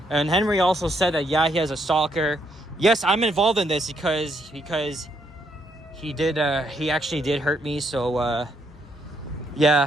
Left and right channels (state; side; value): normal; both; correlation 0.74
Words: and Henry also said that yeah, he has a stalker. Yes, I'm involved in this because he actually did hurt me. So